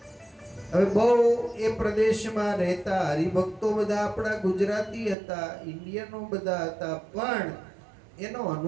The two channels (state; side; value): drops out; left; at 5.2 s